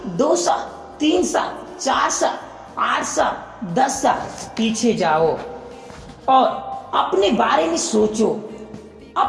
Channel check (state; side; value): identical; both; correlation 1.00